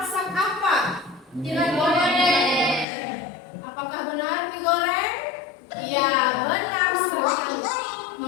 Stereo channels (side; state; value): right; drops out; at 2.9 s